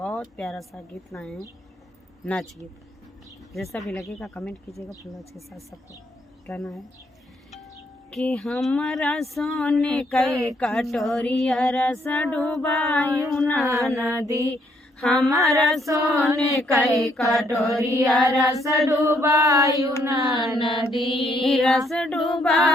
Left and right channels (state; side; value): normal; both; correlation 0.71